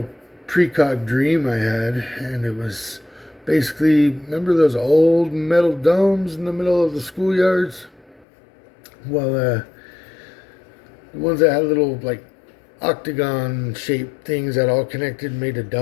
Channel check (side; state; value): right; drops out; at 8.2 s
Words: precog dream I had, and it was basically, remember those old metal domes in the middle of the schoolyards? Well, the ones that had little, like, octagon-shaped things that all connected and made a